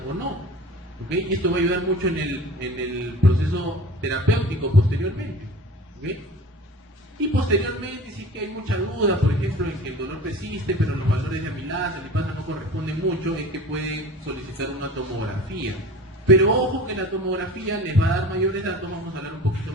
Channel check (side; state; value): both; normal; correlation 0.40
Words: o no, ¿okay? Y esto va a ayudar mucho en el proceso terapéutico posteriormente, ¿okay? Y posteriormente, si es que hay mucha duda, por ejemplo, en que el dolor persiste, pero los valores de amilasa, lipasa no corresponden mucho, es que pueden solicitar una tomografía. Pero ojo que la tomografía les va a dar mayores datos, vamos a hablar un poquito